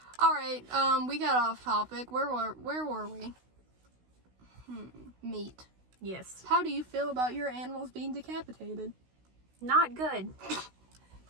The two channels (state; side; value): late; left; 16 ms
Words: All right, we got off topic. Where were we? Meat. Yes. How do you feel about your animals being decapitated? Not good.